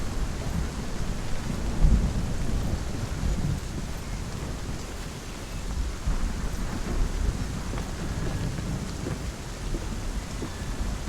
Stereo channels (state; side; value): identical; both; correlation 1.00